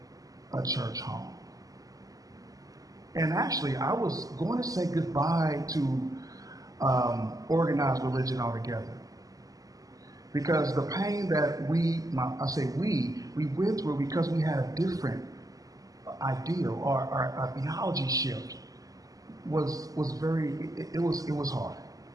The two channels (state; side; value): late; left; 0.17 ms